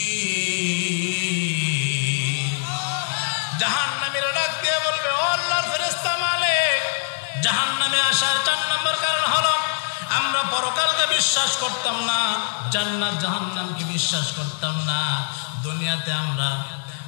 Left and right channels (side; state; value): right; silent; digital silence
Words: জাহান্নামীরা ডাক দিয়ে বলবে, ও আল্লাহর ফেরেশতা মালিক, জাহান্নামে আসার 4 নম্বর কারণ হলো আমরা পরকালকে বিশ্বাস করতাম না, জান্নাত জাহান্নামকে বিশ্বাস করতাম না, দুনিয়াতে আমরা